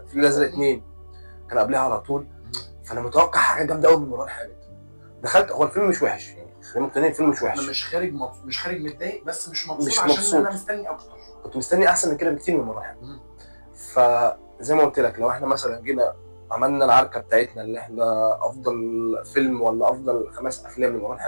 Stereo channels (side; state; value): both; inverted; correlation -1.00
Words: الازرق 2 كان قبلها على طول. فانا متوقع حاجه جامده قوي من مروان حامد. دخلت، هو الفيلم مش وحش، يعني خلينا مقتنعين الفيلم مش وحش. انا مش خارج متضايق، بس مش مبسوط مش عشان مبسوط. انا مستني اكتر. كنت مستني احسن من كده بكتير من مروان حامد. فزي ما قلت لك، لو احنا مثلا جينا عملنا العركه بتاعتنا اللي احنا افضل فيلم ولا افضل 5 افلام لمروان